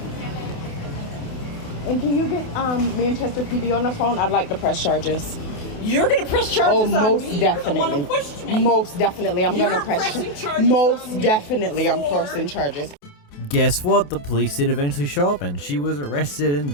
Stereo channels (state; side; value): late; right; 28 ms